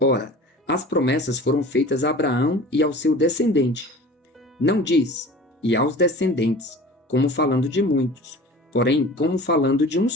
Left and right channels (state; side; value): normal; both; correlation 0.41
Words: as promessas foram feitas a Abraão e ao seu descendente. Não diz: e aos descendentes, como falando de muitos, porém como falando de um